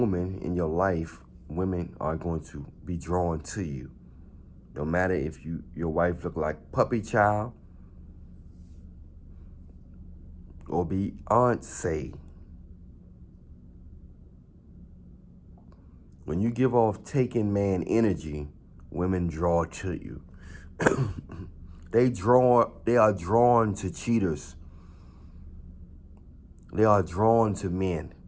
in your life, women are going to be drawn to you. No matter if your wife look like Puppy Child or Beyonce. When you give off taking man energy, women draw to you. They are drawn to cheaters. They are drawn to men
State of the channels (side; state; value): both; identical; correlation 1.00